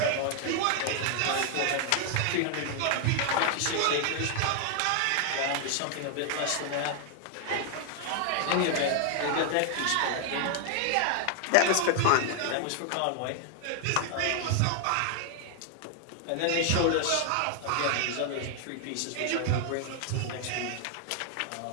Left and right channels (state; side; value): different; both; correlation 0.00